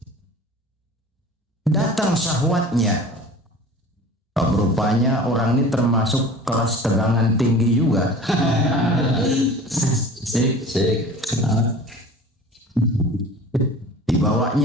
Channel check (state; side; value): normal; both; correlation 0.41